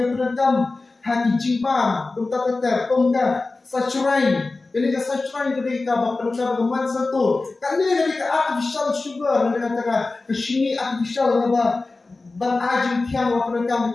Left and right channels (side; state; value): right; quieter; 3.5 dB